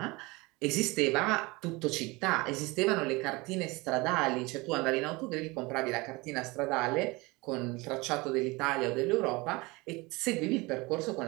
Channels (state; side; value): quieter; left; 23.9 dB